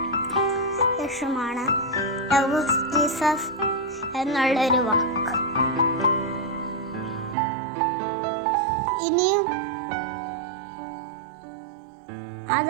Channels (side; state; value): left; drops out; at 7.4 s